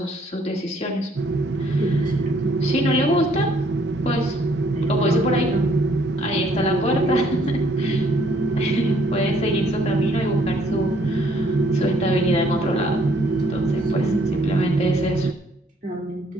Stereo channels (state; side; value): normal; both; correlation 0.64